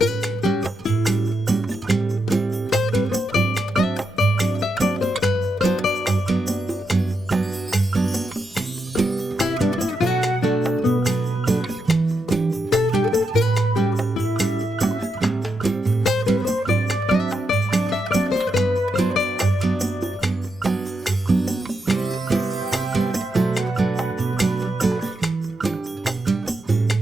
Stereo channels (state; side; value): normal; both; correlation 0.84